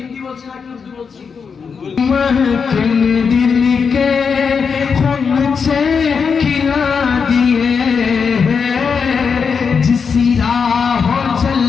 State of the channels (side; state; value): right; quieter; 5.9 dB